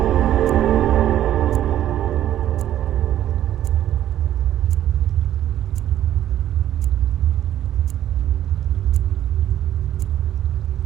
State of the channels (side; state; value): left; quieter; 11.9 dB